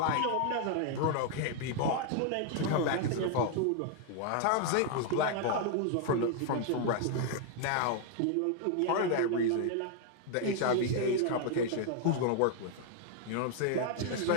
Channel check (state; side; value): different; both; correlation 0.00